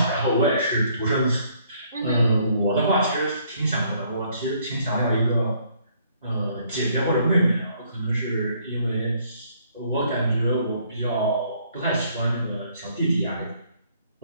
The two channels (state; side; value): inverted; both; correlation -0.65